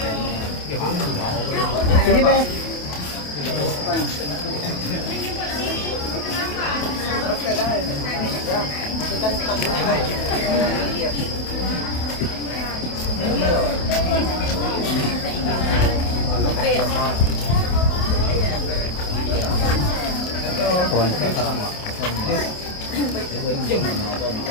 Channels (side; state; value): right; late; 28 ms